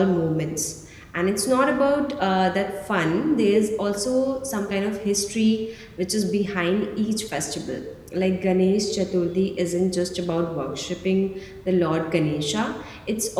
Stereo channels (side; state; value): both; identical; correlation 1.00